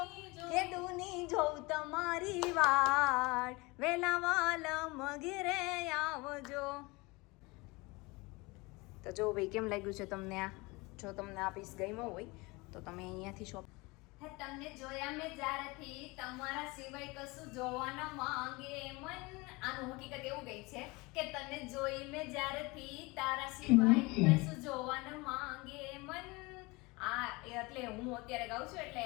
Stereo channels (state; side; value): quieter; right; 24.6 dB